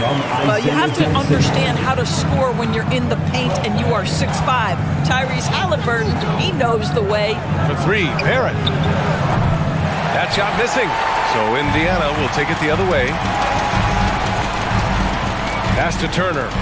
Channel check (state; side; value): identical; both; correlation 1.00